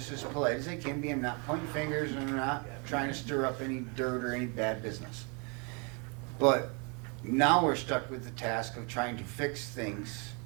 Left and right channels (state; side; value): quieter; left; 33.6 dB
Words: as polite as I can be. I'm not pointing fingers and I'm not trying to stir up any dirt or any bad business. But now we're stuck with the task of trying to fix things